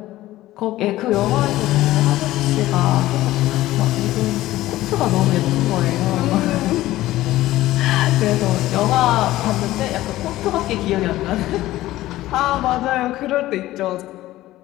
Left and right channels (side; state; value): right; quieter; 16.0 dB